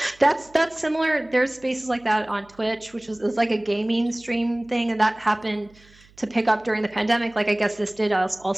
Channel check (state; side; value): noise; right; hum, 28 dB below the sound